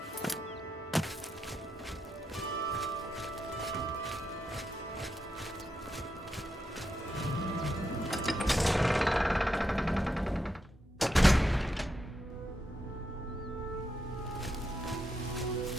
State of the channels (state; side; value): normal; both; correlation 0.83